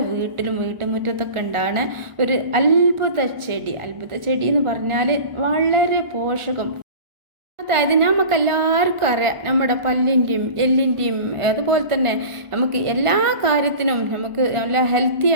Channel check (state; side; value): late; left; 1.4 ms